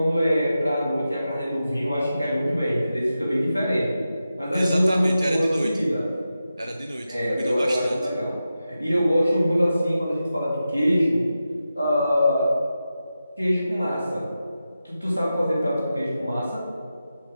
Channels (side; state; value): both; inverted; correlation -0.91